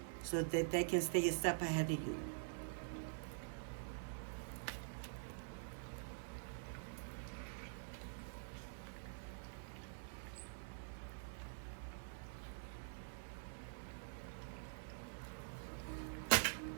so that they can stay a step ahead of you.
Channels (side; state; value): left; silent; digital silence